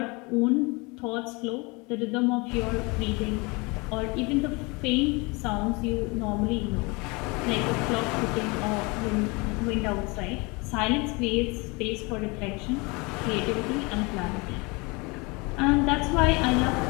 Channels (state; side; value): quieter; right; 27.4 dB